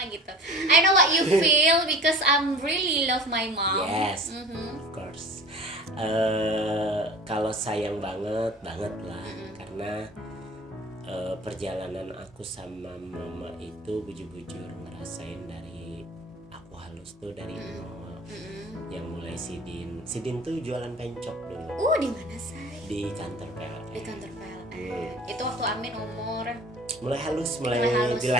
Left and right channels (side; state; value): both; normal; correlation 0.42